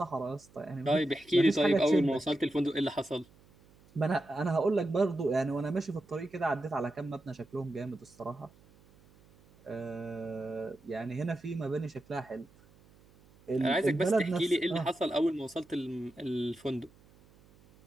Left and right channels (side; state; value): right; noise; hum, 27 dB below the sound